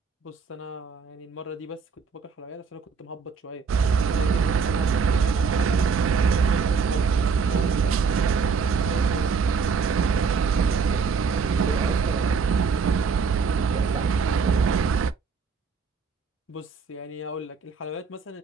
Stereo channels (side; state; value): left; quieter; 5.4 dB